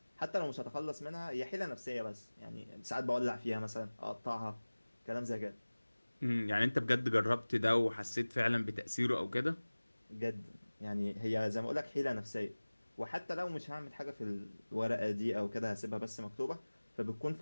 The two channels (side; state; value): both; inverted; correlation -1.00